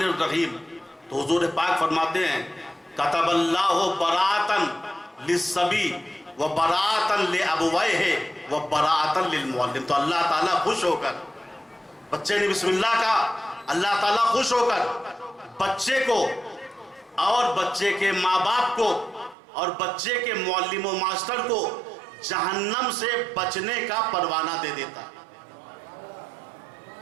الرحیم, تو حضور پاک فرماتے ہیں کتب اللہ براءۃ للصبی و براءۃ لابویہ و براءۃ للمعلم. تو اللہ تعالیٰ خوش ہو کر, بچے نے بسم اللہ کہا, اللہ تعالیٰ خوش ہو کر بچے کو اور بچے کے ماں باپ کو اور بچے کے معلم و ماسٹر کو جہنم سے بچنے کا پروانہ دے دیتا.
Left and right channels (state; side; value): drops out; left; at 19.4 s